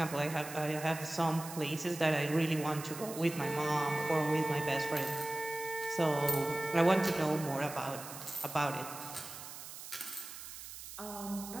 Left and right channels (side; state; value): right; noise; hiss, 12 dB below the sound